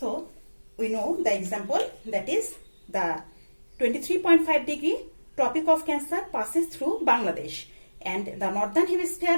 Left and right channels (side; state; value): both; inverted; correlation -1.00